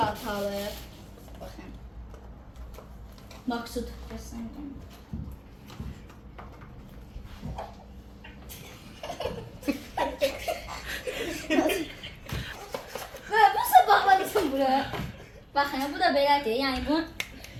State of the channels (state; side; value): identical; both; correlation 1.00